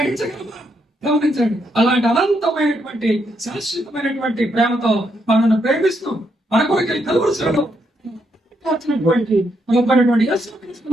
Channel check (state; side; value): normal; both; correlation 0.78